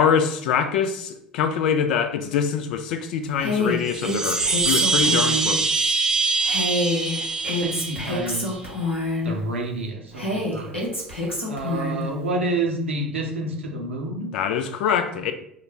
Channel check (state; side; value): normal; both; correlation 0.32